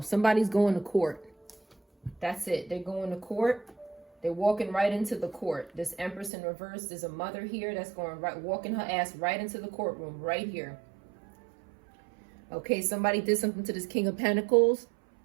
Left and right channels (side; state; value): left; drops out; at 6.3 s